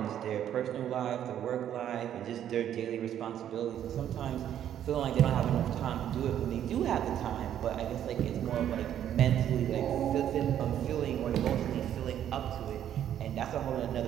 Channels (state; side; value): quieter; left; 10.4 dB